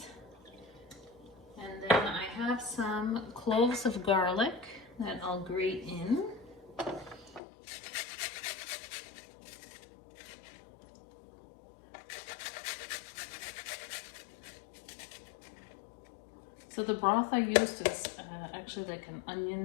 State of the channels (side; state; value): right; drops out; at 7.4 s